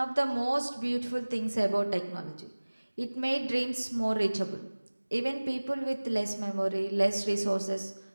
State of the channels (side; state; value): both; inverted; correlation -1.00